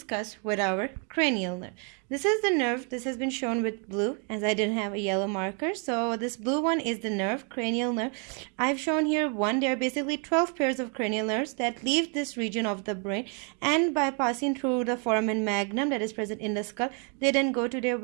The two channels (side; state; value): left; quieter; 38.6 dB